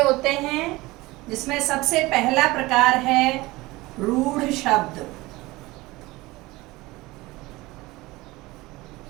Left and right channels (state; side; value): quieter; left; 20.6 dB